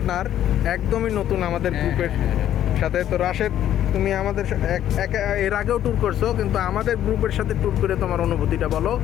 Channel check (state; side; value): quieter; right; 11.4 dB